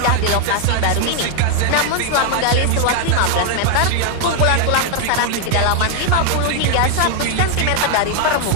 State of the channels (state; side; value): different; both; correlation 0.00